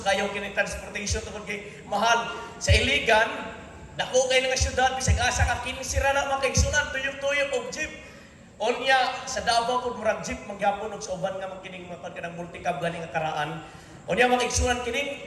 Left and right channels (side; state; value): both; identical; correlation 1.00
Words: kayo kini transportation tungod kay mahal sa Iligan. Dako kay nga syudad bisag asa ka kinisira na makaigsunan tuyok-tuyok og jeep. Onya sa Davao pud murag jeep magyapon og sa uban nga kining mga kanang multicab gani nga karaan. Onya makaigsunan